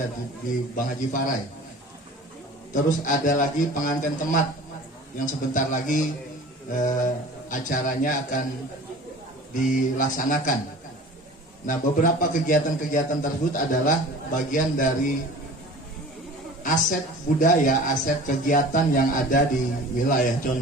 di Bang Haji Farai. Terus ada lagi pengantin temat yang sebentar lagi acaranya akan dilaksanakan. Nah, beberapa kegiatan-kegiatan tersebut adalah bagian dari aset budaya, aset kegiatan yang ada di wilayah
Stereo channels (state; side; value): normal; both; correlation 0.42